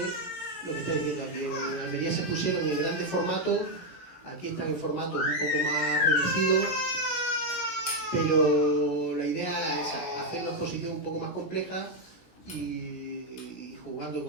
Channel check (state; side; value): late; right; 16 ms